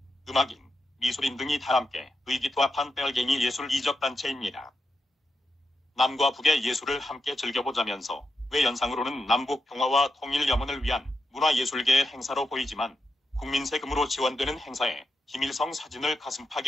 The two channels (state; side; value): normal; both; correlation 0.86